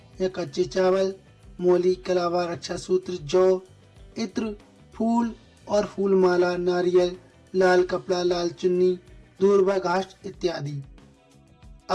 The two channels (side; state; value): both; identical; correlation 1.00